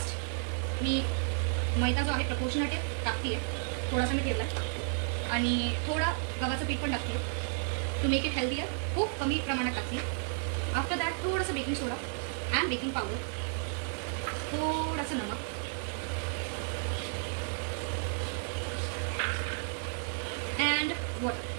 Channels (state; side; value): silent; left; 56 dB below the other